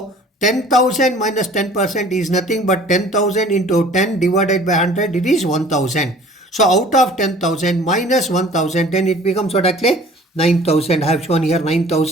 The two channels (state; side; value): normal; both; correlation 0.49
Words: 10,000 minus 10% is nothing but 10,000 into 10 divided by 100, it is 1,000. So out of 10,000 minus 1,000, then it becomes what actually? 9,000. I have shown here